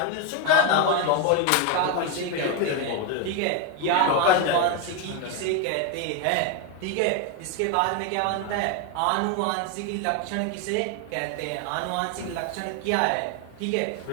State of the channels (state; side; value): different; both; correlation 0.01